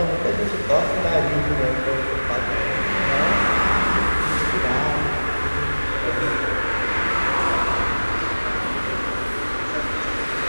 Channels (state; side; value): inverted; both; correlation -1.00